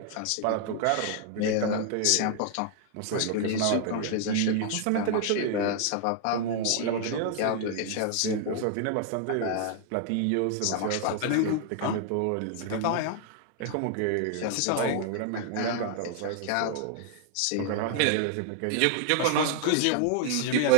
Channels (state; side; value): different; both; correlation 0.00